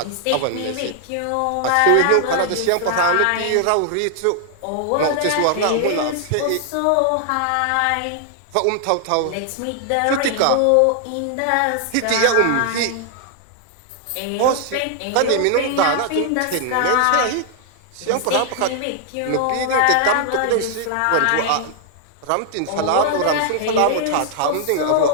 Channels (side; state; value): both; different; correlation 0.00